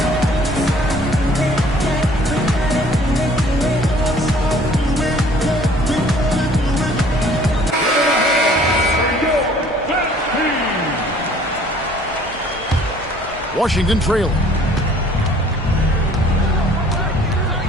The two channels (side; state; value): both; normal; correlation 0.55